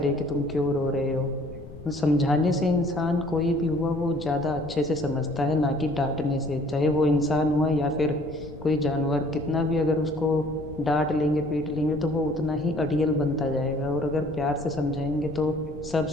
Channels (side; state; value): left; noise; rumble, 15 dB below the sound